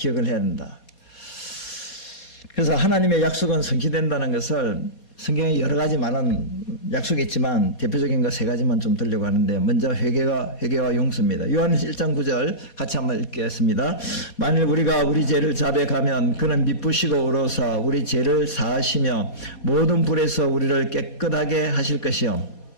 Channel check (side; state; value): right; late; 4.2 ms